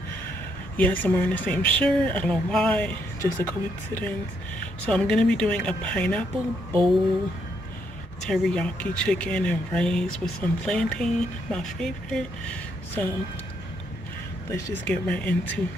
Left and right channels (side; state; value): both; normal; correlation 0.75